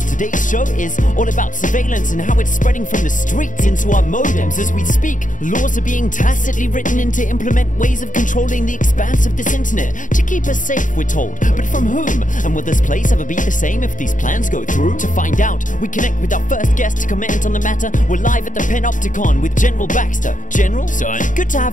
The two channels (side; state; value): right; late; 0.38 ms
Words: today's show is all about surveillance and how it's spreading from the streets into our modems. As we speak, laws are being tacitly written in to implement ways of controlling the expanse of this internet to keep us safe, we're told. But from whom? And will this place ever be the same if these plans go through? To find out, we connect with our first guest to comment on the matter. We're live at the Panopticon with General Baxter. General? Son? Good to